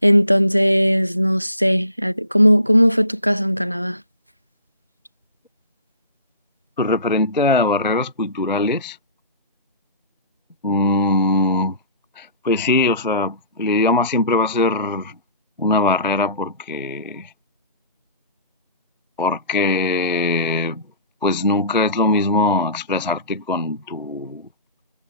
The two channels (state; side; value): inverted; both; correlation -0.45